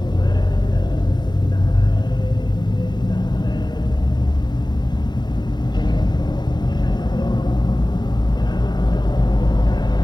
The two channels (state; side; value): late; right; 0.21 ms